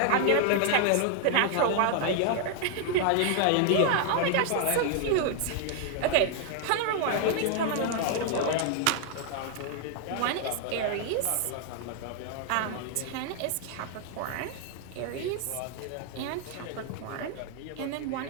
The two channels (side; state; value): both; different; correlation 0.00